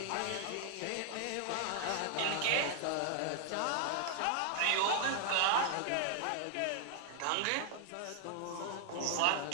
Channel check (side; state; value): both; different; correlation 0.00